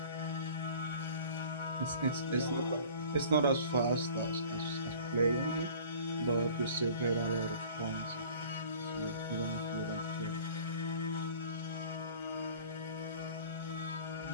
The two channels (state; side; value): inverted; both; correlation -0.48